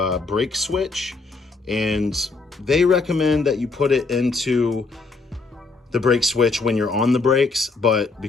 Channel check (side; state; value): right; quieter; 4.0 dB